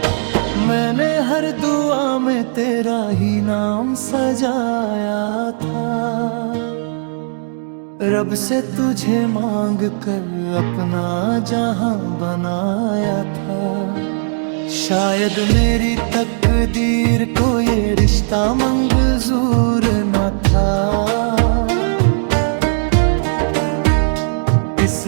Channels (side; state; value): left; silent; digital silence